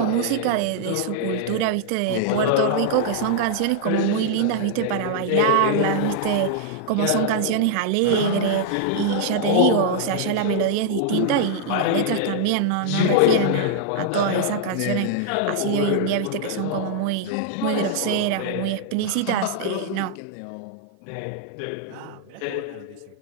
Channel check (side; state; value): both; different; correlation -0.01